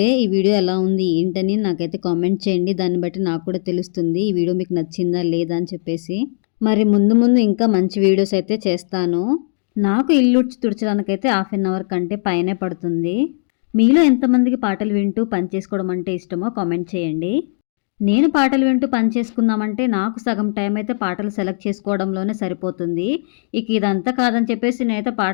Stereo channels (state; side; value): silent; right; digital silence